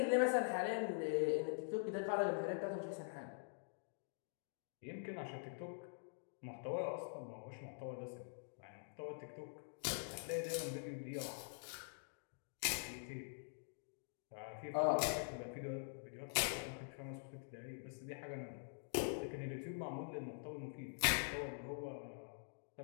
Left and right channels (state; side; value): silent; right; digital silence